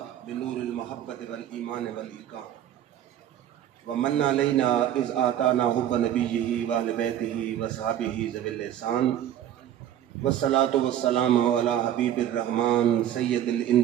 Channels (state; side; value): quieter; left; 11.1 dB